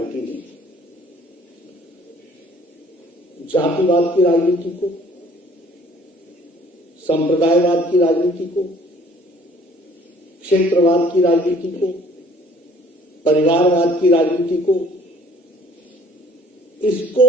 ने जातिवाद की राजनीति को, संप्रदायवाद की राजनीति को, क्षेत्रवाद की राजनीति को, परिवारवाद की राजनीति को, इसको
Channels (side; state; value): both; normal; correlation 0.56